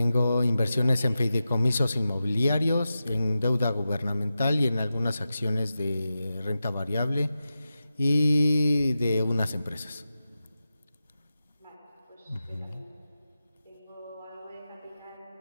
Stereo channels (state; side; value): inverted; both; correlation -0.93